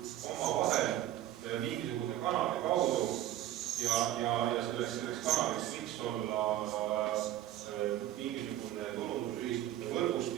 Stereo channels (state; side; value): quieter; left; 13.2 dB